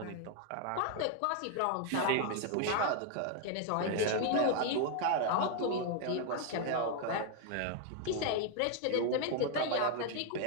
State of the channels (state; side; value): different; both; correlation 0.00